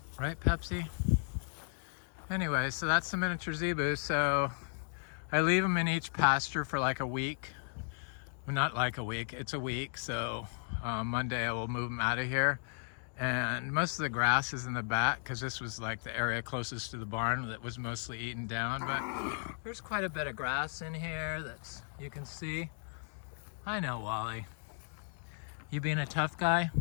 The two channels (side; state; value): right; silent; 54 dB below the other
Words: Right, Pepsi? Anyway, so that's the miniature zebu. So I leave them in each pasture for like a week. Well, not like a week, it's a week. So Monday I will move them out of here. And most of the grass is in the back, because this was like the area closest to the barn that was mostly eaten down. But there's quite a bit of grass in here that you can see. I know, Wally. You being a tough guy?